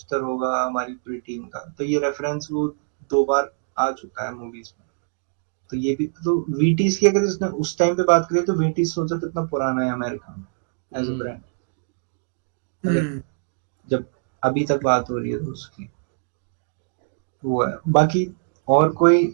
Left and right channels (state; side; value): silent; left; digital silence